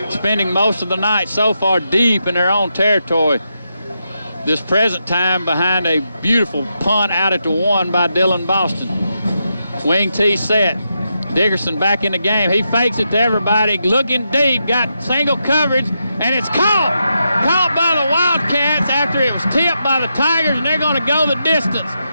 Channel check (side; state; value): both; inverted; correlation -0.84